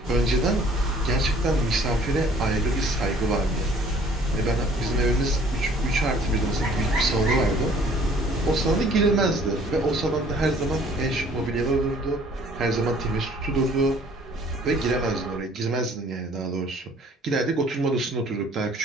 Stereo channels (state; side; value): normal; both; correlation 0.55